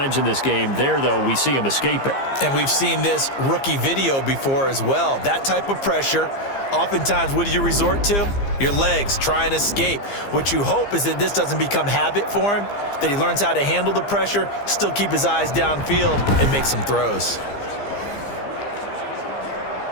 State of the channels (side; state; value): right; late; 15 ms